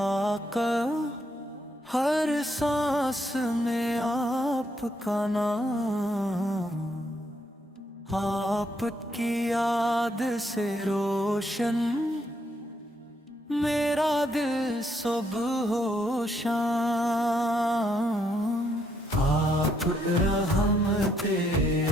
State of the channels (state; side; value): normal; both; correlation 0.74